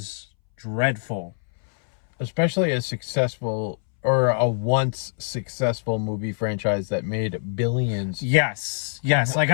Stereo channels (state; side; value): silent; right; 63 dB below the other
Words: dreadful. Especially a successful or a once successful movie franchise that made billions. Yes. Like